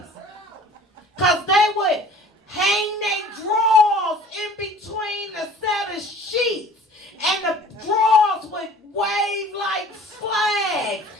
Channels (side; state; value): both; normal; correlation 0.48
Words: Because they would hang their drawers in between the set of sheets. And the drawers would wave like flags.